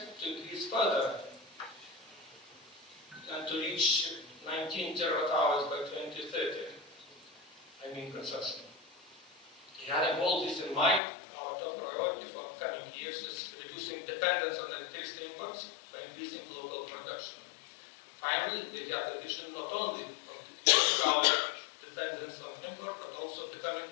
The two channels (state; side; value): drops out; right; at 11.0 s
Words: to increase further and to reach 19 terawatt-hours by 2030. I mean consumption. Having all this in mind, our top priority for coming years is reducing dependence on electricity imports by increasing local production. Finally, we have the vision not only of decreasing our dependence on import, but also becoming